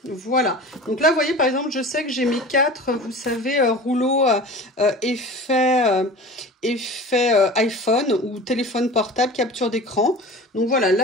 Voilà. Donc là, vous voyez, par exemple, je sais que j'ai mes 4, vous savez, rouleaux effet iPhone ou téléphone portable, capture d'écran. Donc voilà,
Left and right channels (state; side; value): normal; both; correlation 0.37